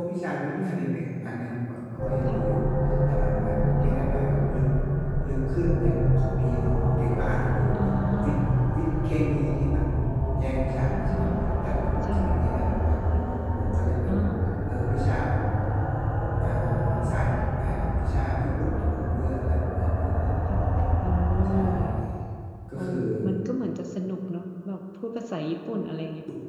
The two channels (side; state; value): both; identical; correlation 1.00